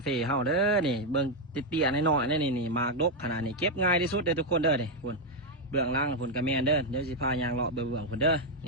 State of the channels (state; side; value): normal; both; correlation 0.02